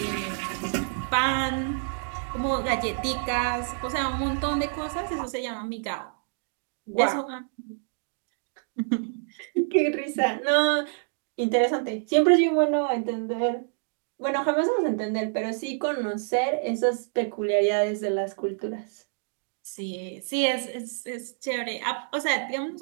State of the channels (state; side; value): silent; left; digital silence